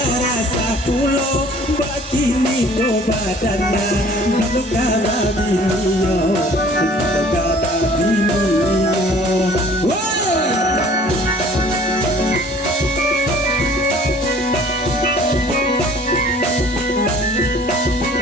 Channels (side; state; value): both; normal; correlation 0.52